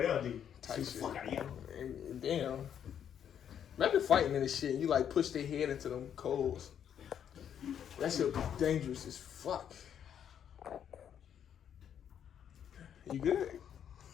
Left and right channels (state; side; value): quieter; right; 9.0 dB